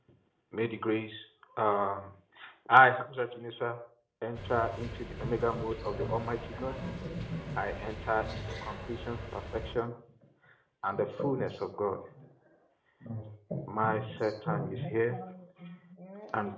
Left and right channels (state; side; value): identical; both; correlation 1.00